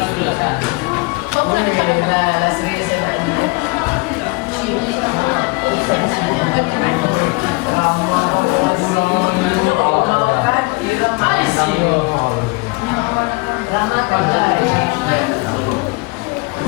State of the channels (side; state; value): right; quieter; 27.0 dB